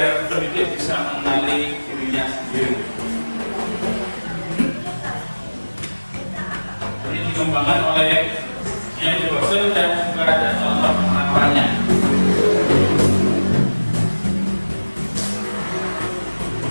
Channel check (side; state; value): both; inverted; correlation -1.00